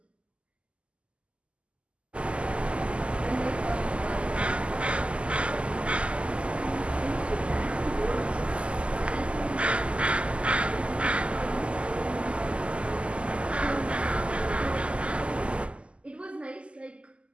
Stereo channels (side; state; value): left; late; 0.055 ms